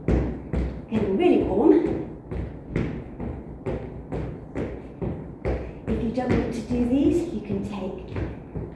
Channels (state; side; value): identical; both; correlation 1.00